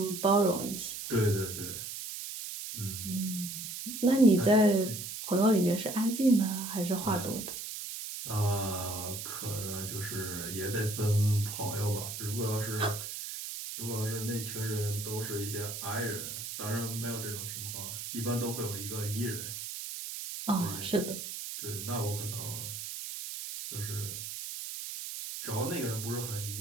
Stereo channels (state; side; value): noise; right; hiss, 7 dB below the sound